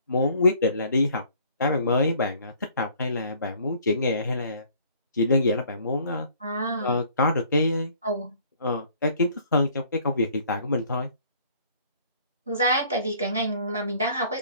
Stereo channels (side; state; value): both; inverted; correlation -0.57